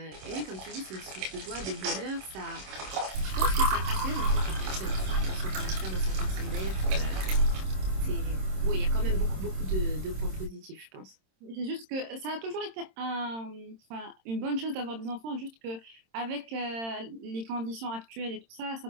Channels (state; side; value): late; left; 26 ms